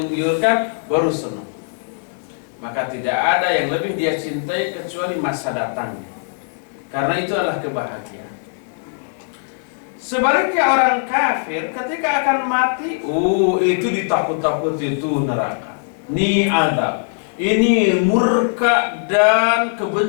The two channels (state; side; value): silent; right; digital silence